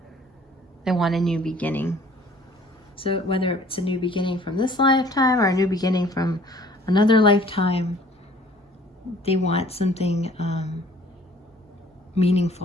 They want a new beginning. So whether it's a new beginning from this lifetime or a new beginning from another lifetime, they want something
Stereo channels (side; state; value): both; normal; correlation 0.54